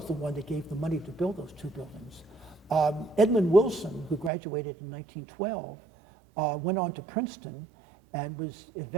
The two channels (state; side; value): drops out; left; at 4.3 s